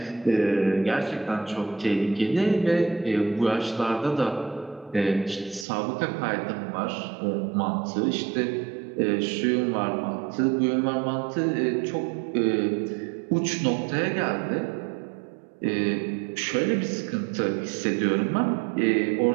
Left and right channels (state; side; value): drops out; left; at 5.7 s